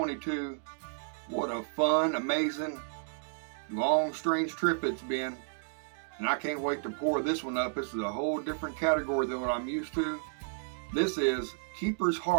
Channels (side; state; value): left; silent; digital silence